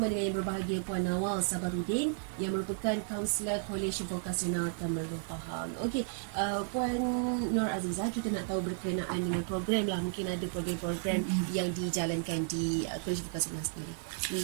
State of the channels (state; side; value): silent; left; digital silence